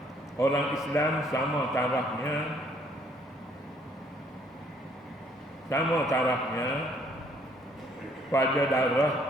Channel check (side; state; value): both; normal; correlation 0.64